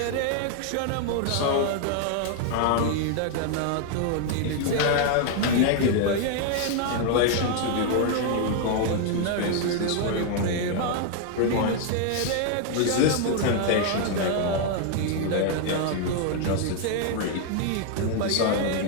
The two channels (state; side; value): different; both; correlation 0.00